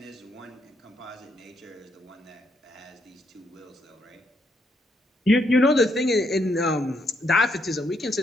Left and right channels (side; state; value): both; normal; correlation 0.75